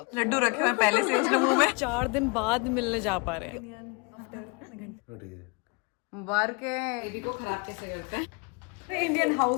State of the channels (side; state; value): right; quieter; 31.0 dB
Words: Laddu रखे हुए पहले से उसने मुंह में। 4 दिन बाद मिलने जा पा रहे हैं। मुबारक बेबी को खराब कैसे करते हैं। Indian